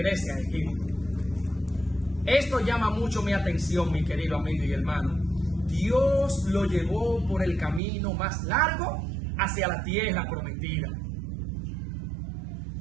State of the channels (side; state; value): left; drops out; at 7.8 s